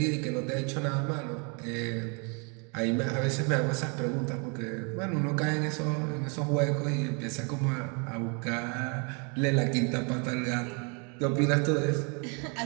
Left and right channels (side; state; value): left; quieter; 35.0 dB